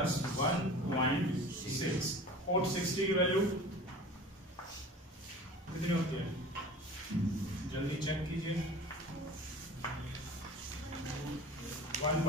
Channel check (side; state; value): both; normal; correlation 0.38